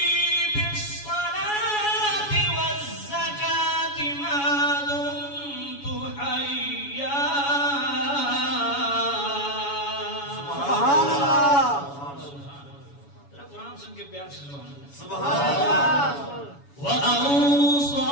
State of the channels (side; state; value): right; late; 7.1 ms